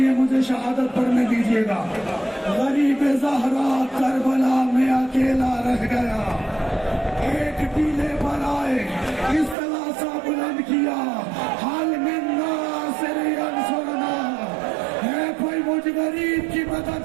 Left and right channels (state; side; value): drops out; left; at 9.6 s